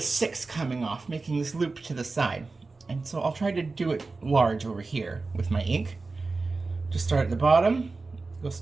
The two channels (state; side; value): quieter; left; 3.8 dB